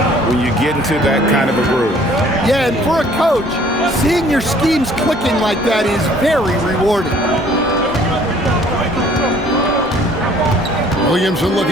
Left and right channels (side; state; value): both; normal; correlation 0.56